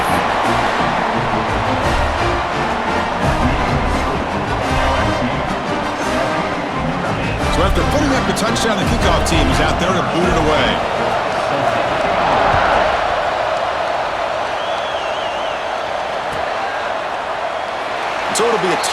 So after putting up the touchdown, the kickoff team is out there to boot it away. So it'll be a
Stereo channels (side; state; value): both; identical; correlation 1.00